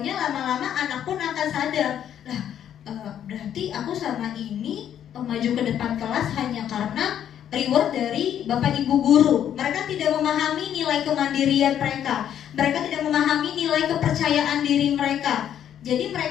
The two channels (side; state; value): right; quieter; 9.9 dB